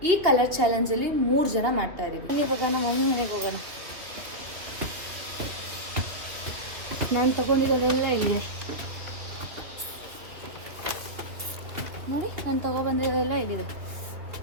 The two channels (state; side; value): late; left; 3.0 ms